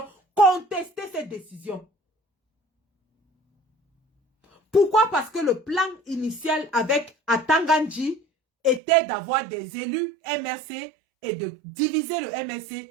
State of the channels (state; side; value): drops out; left; at 8.8 s